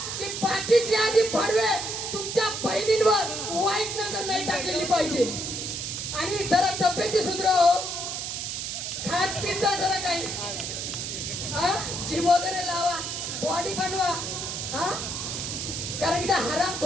की बाकी जिहादी भडवे तुमच्या बहिणींवर वाईट नजर नाही टाकलेली पाहिजे. आणि जरा तब्येती सुधाराव, खात पिझ्झा जरा काही जिम वगैरे लावा, बॉडी बनवा. कारण की त्या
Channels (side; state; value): right; noise; hiss, 4 dB below the sound